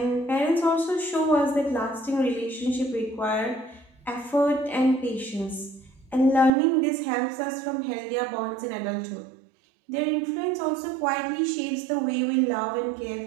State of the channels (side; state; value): left; drops out; at 6.5 s